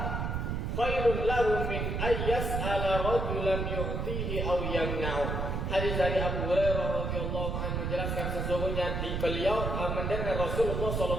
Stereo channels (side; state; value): right; noise; rumble, 1 dB below the sound